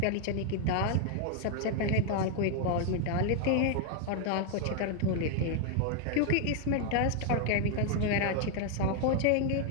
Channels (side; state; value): both; different; correlation 0.00